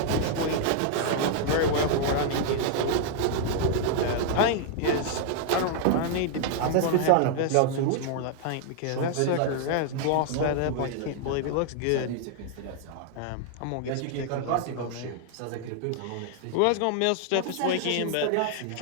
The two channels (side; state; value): both; different; correlation 0.00